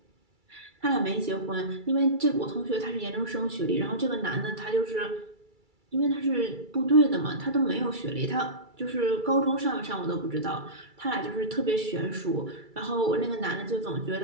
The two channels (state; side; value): late; left; 2.3 ms